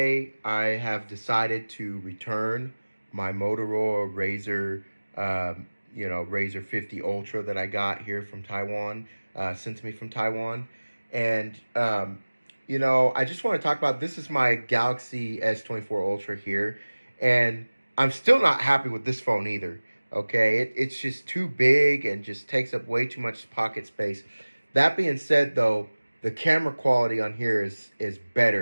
I have decided to return my Motorola Razr, Razr 50 Ultra that I got here from Taiwan, sent to me from Taiwan, and I just want to talk about this is my Galaxy S24 Ultra here, and I'm still not happy with this phone either. Okay, it's just too big and just takes up way too much pocket space. That being said, though, the camera quality on here is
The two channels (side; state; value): both; inverted; correlation -1.00